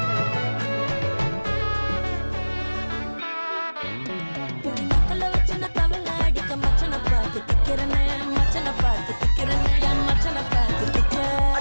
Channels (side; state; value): both; inverted; correlation -1.00